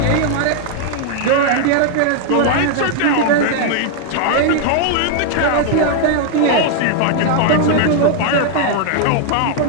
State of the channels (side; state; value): both; different; correlation 0.00